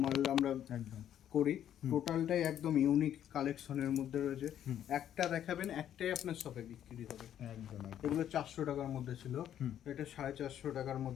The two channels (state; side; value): quieter; right; 10.5 dB